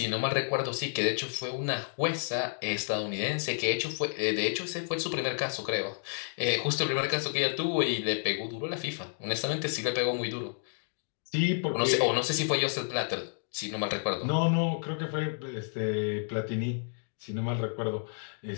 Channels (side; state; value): right; silent; digital silence